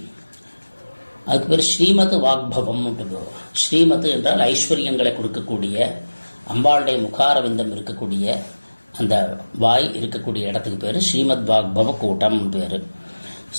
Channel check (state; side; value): inverted; both; correlation -1.00